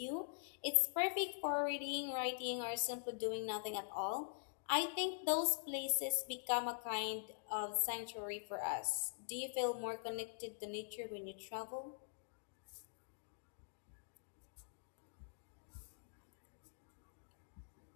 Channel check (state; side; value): silent; right; digital silence